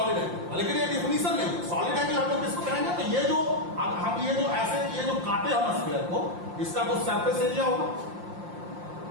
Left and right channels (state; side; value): late; left; 5.7 ms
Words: एंगल। लेकिन ये डिफिनेशन नहीं है। सॉलिड एंगल हम लोग किसको कहेंगे, तो ये जो हम ये जो ऐसे ये जो काटे हम स्फीयर को, इसका कुछ सरफेस एरिया होगा,